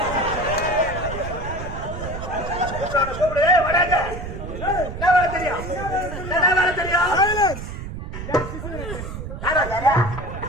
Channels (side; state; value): right; noise; rumble, 8 dB below the sound